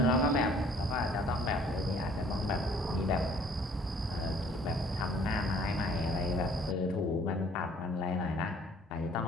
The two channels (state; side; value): normal; both; correlation 0.57